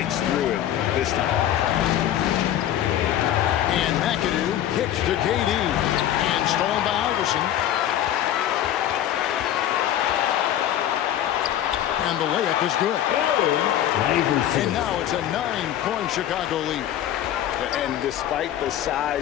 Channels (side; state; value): right; quieter; 11.5 dB